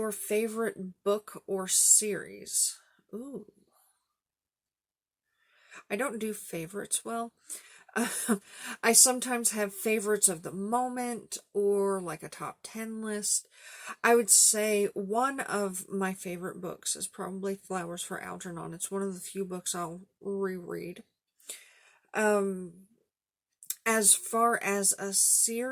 favorite book or series? Ooh. I don't do favorites well. I sometimes have favorites of the moment or like a top 10 list. I would say one of my favorite books is probably Flowers for Algernon. It's one of the few books I'll reread. As far as a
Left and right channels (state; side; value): identical; both; correlation 1.00